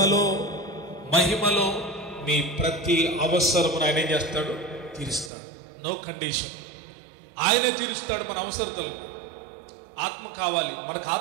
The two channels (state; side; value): drops out; left; at 5.3 s